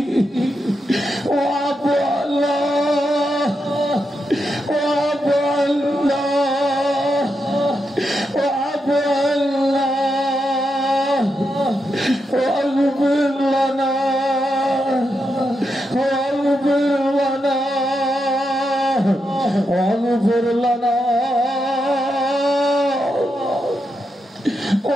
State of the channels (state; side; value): normal; both; correlation 0.85